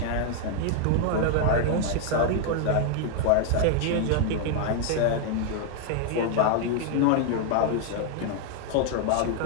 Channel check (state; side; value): different; both; correlation 0.00